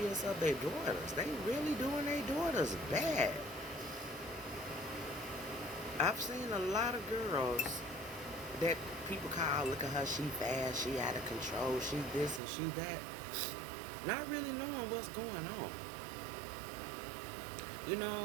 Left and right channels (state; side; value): drops out; left; at 12.4 s